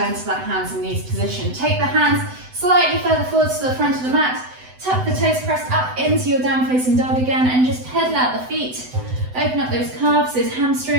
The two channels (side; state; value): left; late; 7.9 ms